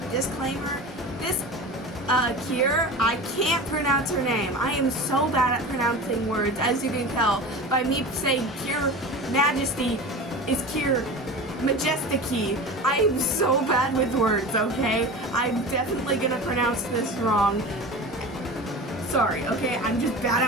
disclaimer. This Cure, I can't pronounce her name. I am so bad at pronouncing words, as you can tell by me saying Cure Majesty is Cure Majesty. I am so bad with words, okay? I'm definitely gonna pronounce this wrong. Sorry, okay? I'm just bad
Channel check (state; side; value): normal; both; correlation 0.32